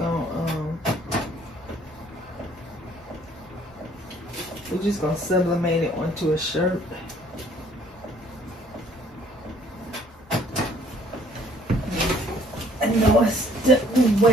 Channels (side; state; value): both; normal; correlation 0.60